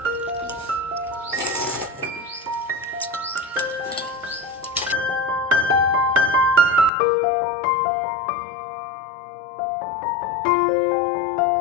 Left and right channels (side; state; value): right; drops out; at 6.9 s